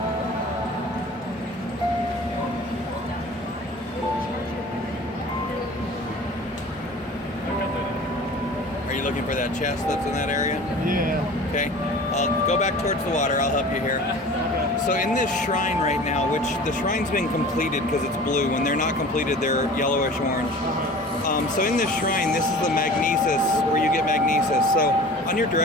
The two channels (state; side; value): normal; both; correlation 0.41